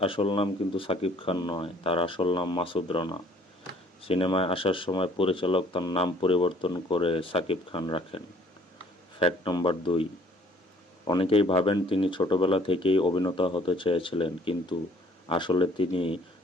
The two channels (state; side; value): normal; both; correlation 0.58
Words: আসল নাম কিন্তু সাকিব খান নয়, তার আসল নাম মাসুদ রানা। সিনেমায় আসার সময় পরিচালক তার নাম পরিবর্তন করে সাকিব খান রাখেন। ফ্যাক্ট নম্বর 2, অনেকেই ভাবেন তিনি ছোটবেলা থেকেই অভিনেতা হতে চেয়েছিলেন, কিন্তু আসলে তিনি